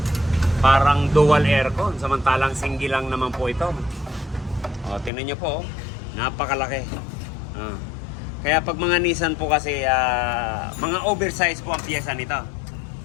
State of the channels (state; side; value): drops out; right; at 5.1 s